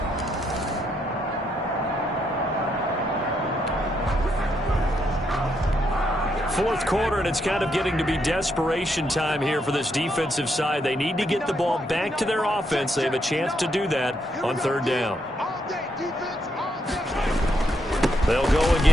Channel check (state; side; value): normal; both; correlation 0.77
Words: Fourth quarter, and it's kind of getting to be desperation time here for this defensive side. They need to get the ball back to their offense. They have a chance to do that on third down. They'll go